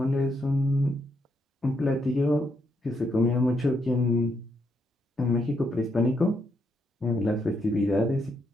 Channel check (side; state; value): both; normal; correlation 0.77